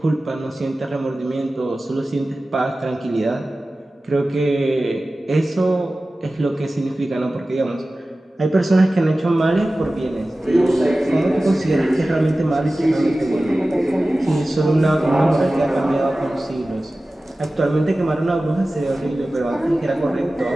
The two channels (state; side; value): normal; both; correlation 0.96